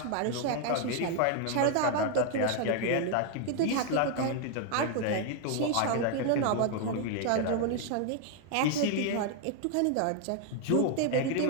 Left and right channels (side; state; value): both; different; correlation 0.00